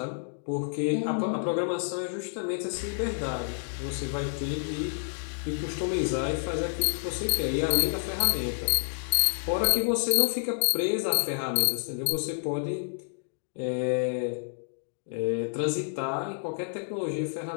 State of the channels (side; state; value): right; silent; digital silence